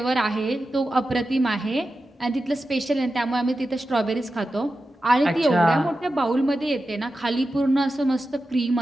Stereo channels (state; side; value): normal; both; correlation 0.92